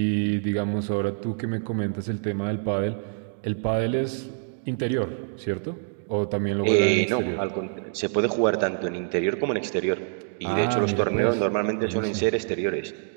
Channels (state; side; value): silent; left; digital silence